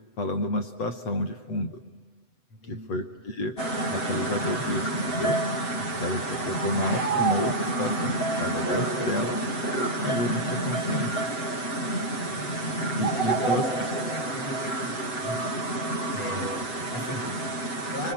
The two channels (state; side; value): late; right; 7.9 ms